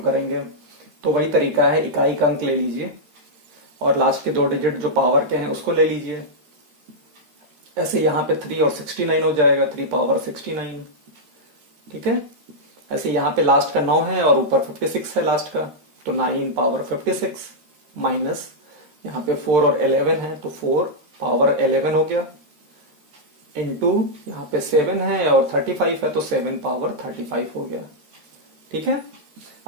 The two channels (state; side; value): late; left; 13 ms